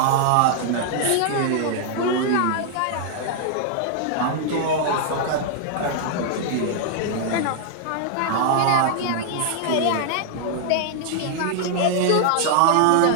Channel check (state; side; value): different; both; correlation -0.01